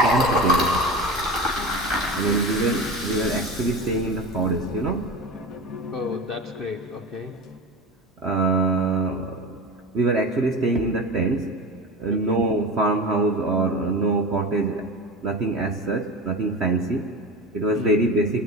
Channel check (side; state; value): both; normal; correlation 0.29